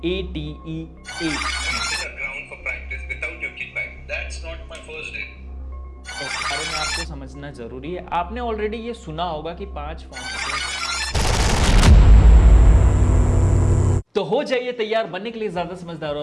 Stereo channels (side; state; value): both; identical; correlation 1.00